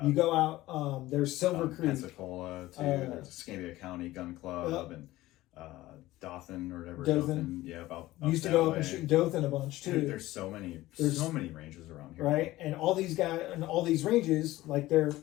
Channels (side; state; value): right; quieter; 17.1 dB